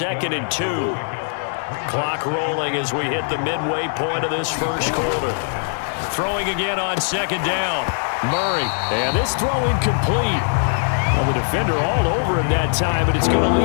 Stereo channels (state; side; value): silent; right; digital silence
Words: and 2. Clock rolling as we hit the midway point of this first quarter. Throwing again on 2nd down. Murray, and this throw incomplete. Well, the defender all over him that time, but it's going to